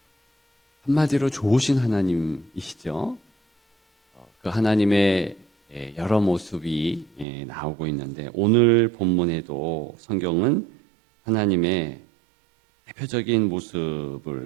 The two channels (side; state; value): left; drops out; at 7.2 s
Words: 한마디로 좋으신 하나님이시죠? 그 하나님의 여러 모습이 나오고 있는데 오늘 본문에도 성경은 하나님의 대표적인